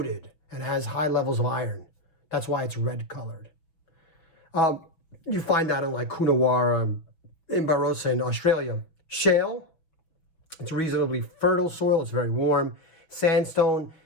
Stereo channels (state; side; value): late; right; 6.2 ms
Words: and has high levels of iron. That's why it's red colored. You find that in like Coonawarra, in Barossa in Australia. Shale, it's reasonably fertile soil. It's very warm. Sandstone,